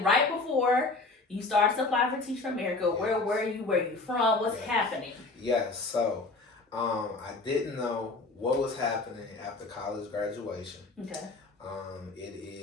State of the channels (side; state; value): right; quieter; 3.5 dB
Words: right before you started to apply for Teach for America. Yes. Where were you? Where are you from? What's happening? Yes, so I didn't know what was happening after college graduation. Okay. It